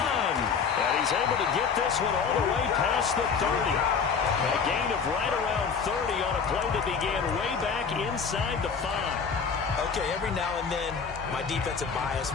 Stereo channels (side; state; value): right; quieter; 6.0 dB